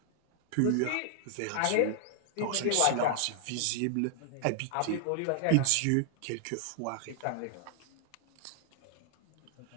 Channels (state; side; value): different; both; correlation 0.00